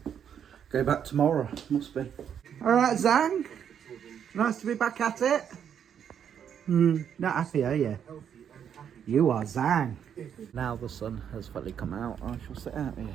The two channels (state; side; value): quieter; left; 8.5 dB